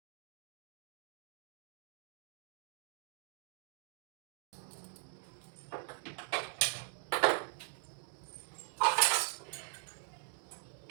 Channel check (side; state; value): left; silent; digital silence